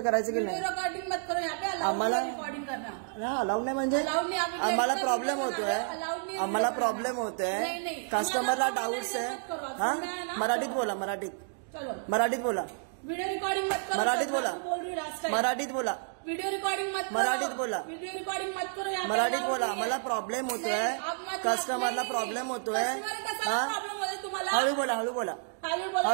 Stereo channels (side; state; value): left; silent; digital silence